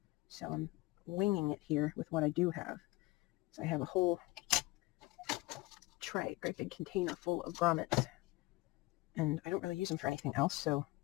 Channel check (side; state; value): right; quieter; 21.1 dB